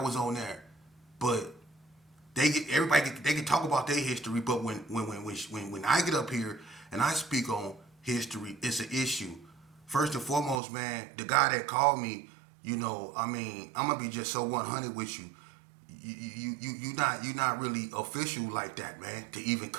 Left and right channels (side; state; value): left; drops out; at 10.6 s